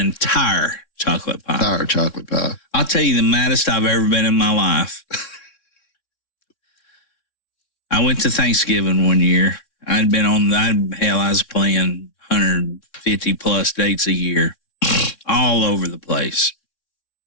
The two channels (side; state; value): right; late; 3.6 ms